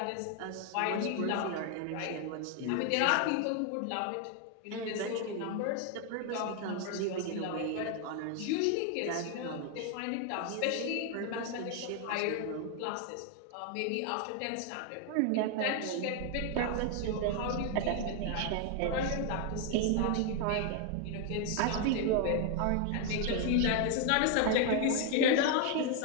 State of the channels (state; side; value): different; both; correlation 0.00